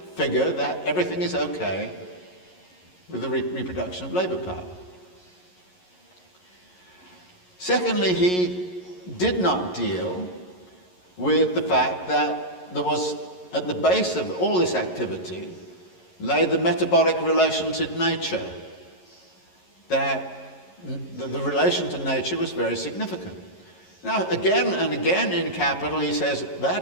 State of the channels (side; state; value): right; late; 11 ms